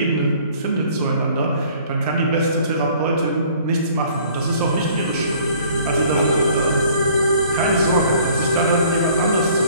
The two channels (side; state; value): both; inverted; correlation -0.55